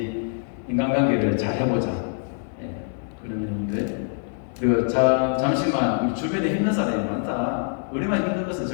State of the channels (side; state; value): right; silent; digital silence